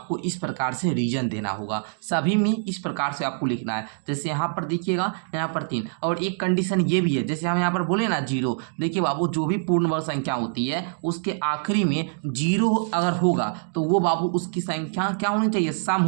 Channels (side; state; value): left; silent; digital silence